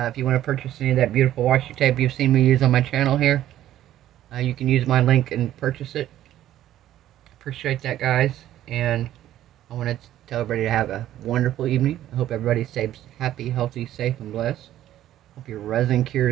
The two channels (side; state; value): left; quieter; 12.8 dB